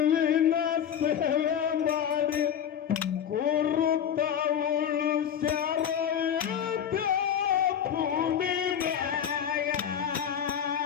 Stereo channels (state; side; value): quieter; right; 8.8 dB